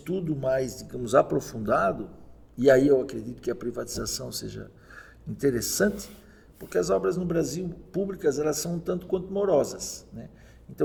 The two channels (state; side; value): identical; both; correlation 1.00